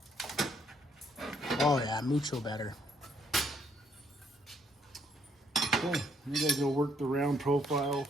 Oh yeah, mucho better. Okay, we gotta go work the round profile.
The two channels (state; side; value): normal; both; correlation 0.70